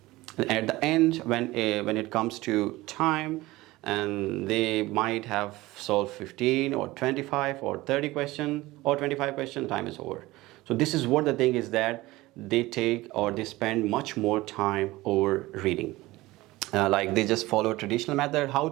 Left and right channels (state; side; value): quieter; left; 19.1 dB